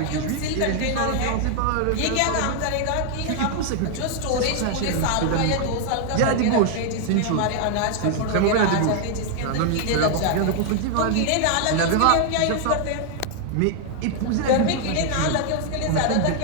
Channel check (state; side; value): different; both; correlation 0.00